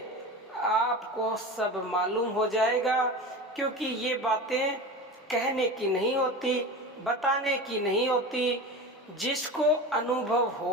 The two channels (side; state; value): both; normal; correlation 0.29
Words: आपको सब मालूम हो जाएगा। क्योंकि ये बातें कहने की नहीं होती, बताने की नहीं होती। जिसको अनुभव